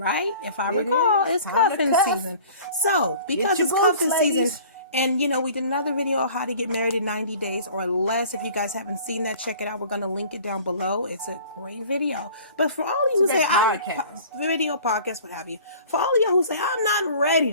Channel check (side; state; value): both; inverted; correlation -0.46